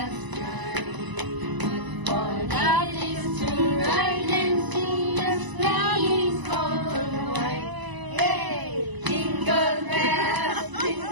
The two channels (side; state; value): left; late; 1.0 ms